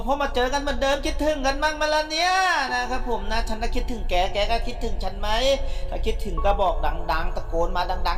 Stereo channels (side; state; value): both; identical; correlation 1.00